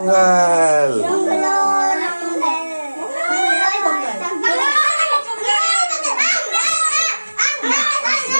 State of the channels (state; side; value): inverted; both; correlation -1.00